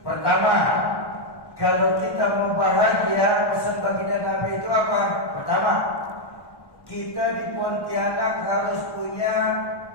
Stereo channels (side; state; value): right; late; 1.1 ms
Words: Pertama, kalau kita mau bahagia, pesan baginda Nabi itu apa? Pertama, kita di Pontianak harus punya